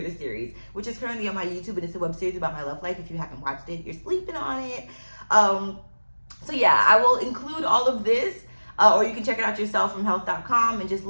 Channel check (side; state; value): both; inverted; correlation -1.00